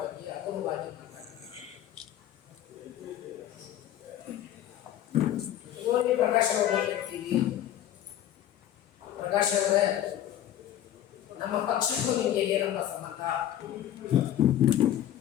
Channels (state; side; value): quieter; right; 11.7 dB